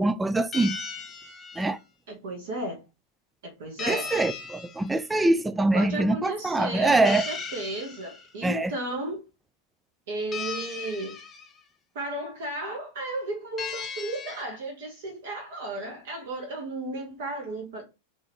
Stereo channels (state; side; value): normal; both; correlation 0.71